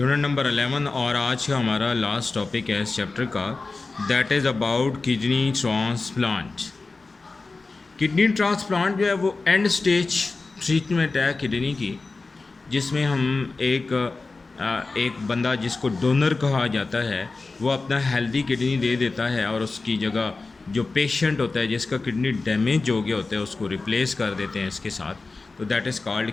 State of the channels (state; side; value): quieter; right; 3.8 dB